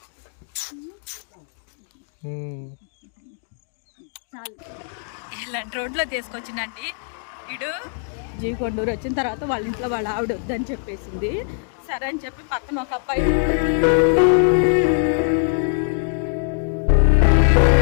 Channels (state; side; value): silent; right; 58 dB below the other